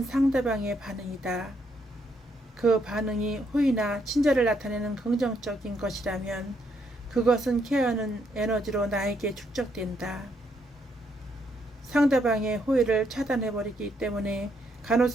상대방의 반응이다. 그 반응이 호의나 친절을 나타내는 긍정적인 것이라면 그것은 케어하는 에너지로 나에게 축적된다. 상대방의 호의를 차단해버리기 때문에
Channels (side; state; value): both; normal; correlation 0.74